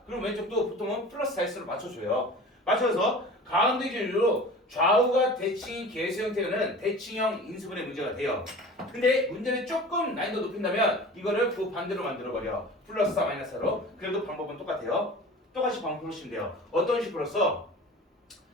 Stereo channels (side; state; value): both; normal; correlation 0.39